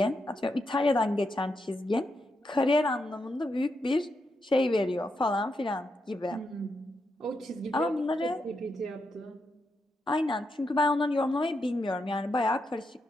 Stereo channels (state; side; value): normal; both; correlation 0.83